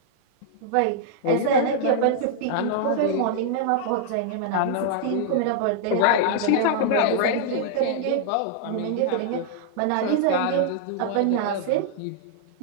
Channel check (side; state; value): both; different; correlation -0.01